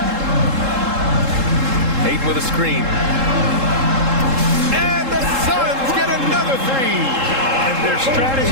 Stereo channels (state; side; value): late; left; 3.7 ms